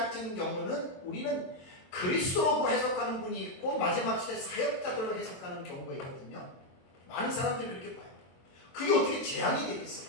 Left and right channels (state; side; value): late; right; 22 ms